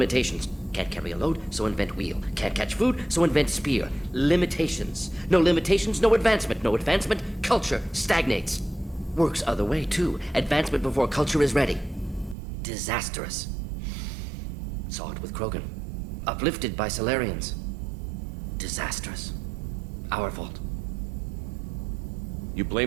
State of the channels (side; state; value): left; drops out; at 12.4 s